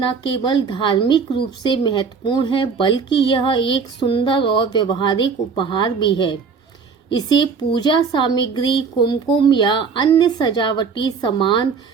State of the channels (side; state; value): left; quieter; 5.5 dB